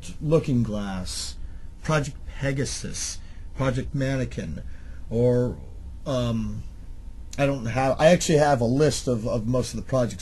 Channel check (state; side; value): identical; both; correlation 1.00